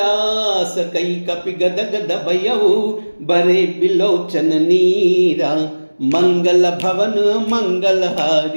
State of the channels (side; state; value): both; inverted; correlation -1.00